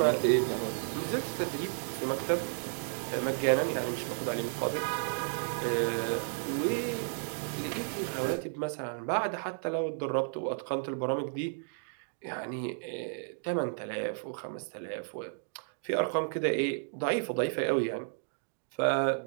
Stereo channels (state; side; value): silent; left; digital silence